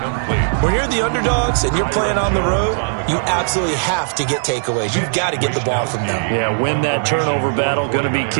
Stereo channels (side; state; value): left; silent; digital silence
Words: When you're the underdogs and you're playing on the road, you absolutely have to get takeaways. You've got to get the ball from them. Yeah, win that turnover battle, going to be